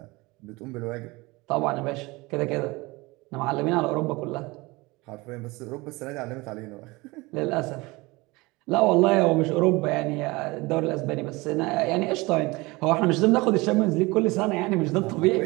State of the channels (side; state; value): left; quieter; 23.1 dB